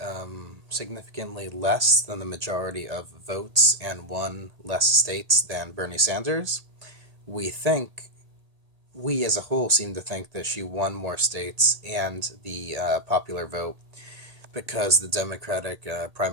significantly less than the majority of votes and won less states than Bernie Sanders, we think we as a whole seem to think that she won more states and the popular vote because the Democratic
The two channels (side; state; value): left; late; 1.8 ms